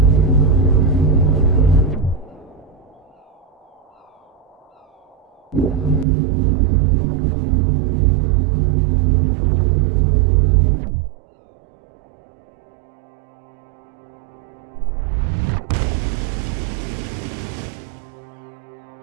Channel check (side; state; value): left; drops out; at 6.1 s